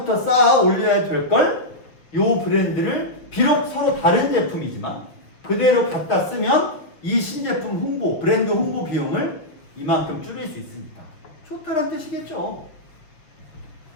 쌓아 올려야 될 걸 요 브랜드를 비록 서로 다른 제품이지만 그대로 갖다 쓰면 이 신제품 홍보, 브랜드 홍보 비용을 이만큼 줄일 수 있으니까 좋다는 뜻이겠죠.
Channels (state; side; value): late; right; 6.4 ms